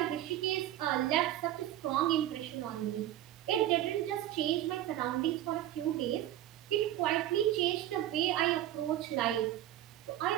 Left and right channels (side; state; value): left; quieter; 13.1 dB